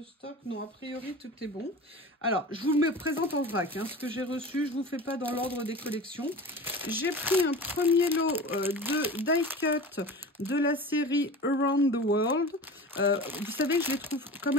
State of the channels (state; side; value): normal; both; correlation 0.34